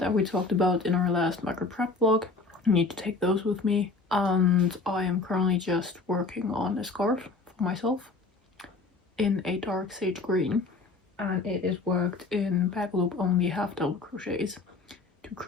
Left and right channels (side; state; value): right; quieter; 3.8 dB